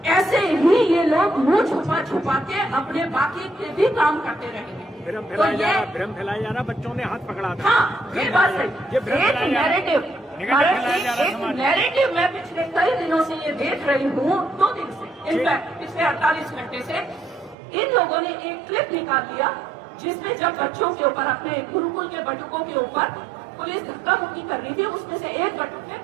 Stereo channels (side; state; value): left; drops out; at 17.6 s